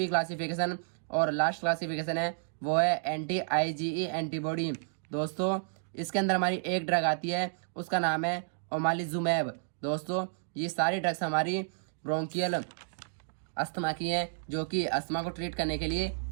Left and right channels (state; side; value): silent; left; digital silence